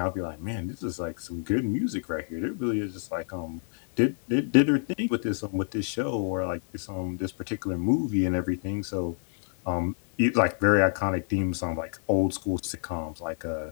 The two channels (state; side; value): silent; right; digital silence